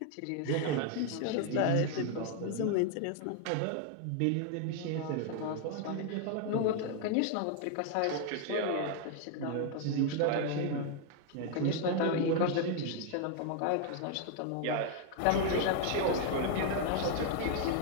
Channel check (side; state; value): both; different; correlation 0.00